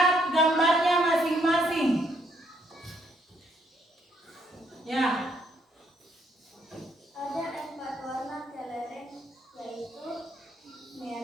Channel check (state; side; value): normal; both; correlation 0.71